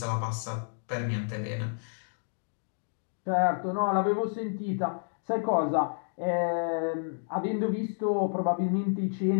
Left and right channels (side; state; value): right; silent; digital silence